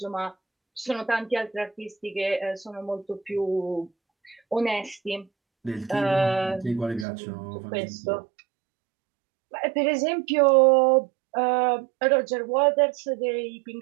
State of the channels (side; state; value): left; drops out; at 7.1 s